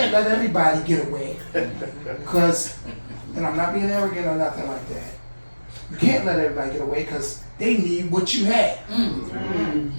let everybody get away. Because, and I'm not being arrogant or nothing like that. You can't let everybody get away because they need what you had.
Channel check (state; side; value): inverted; both; correlation -1.00